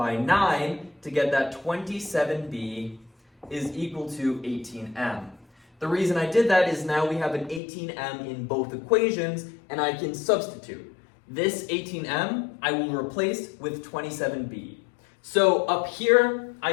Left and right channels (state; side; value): drops out; right; at 7.6 s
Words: 9 to get that 27b is equal to 18m. The reason I did that is now we have an 18m in both equations, and I can substitute. This 18m I will replace with 27b. So up here,